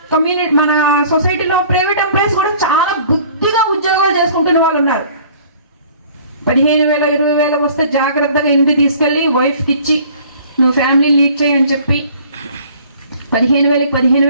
మన సొసైటీలో ప్రైవేట్ ఎంప్లాయీస్ కూడా చాలా బుద్ధిగా ఉద్యోగాలు చేసుకుంటున్న వాళ్ళు ఉన్నారు. 15,000 20,000 వస్తే జాగ్రత్తగా ఇంటికి తీసుకెళ్ళి వైఫ్కి ఇచ్చి నువ్వు ఫ్యామిలీ లీడ్ చేయి అని చెప్పి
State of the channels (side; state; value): both; inverted; correlation -0.52